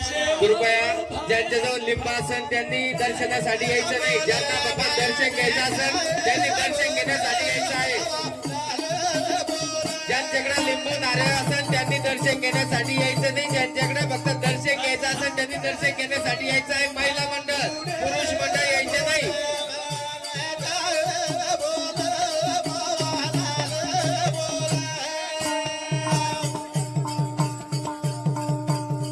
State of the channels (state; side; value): identical; both; correlation 1.00